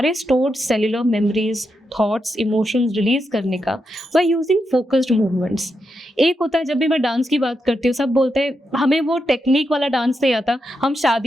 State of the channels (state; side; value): normal; both; correlation 0.85